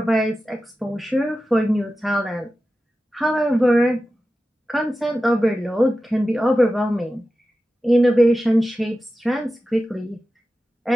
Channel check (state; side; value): normal; both; correlation 0.93